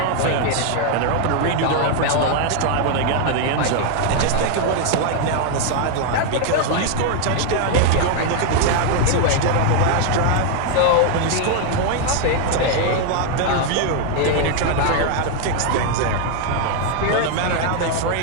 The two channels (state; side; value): different; both; correlation 0.00